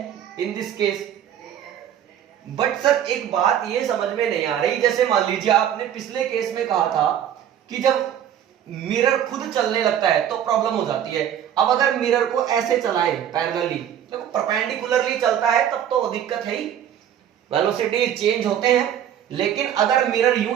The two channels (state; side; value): quieter; left; 10.0 dB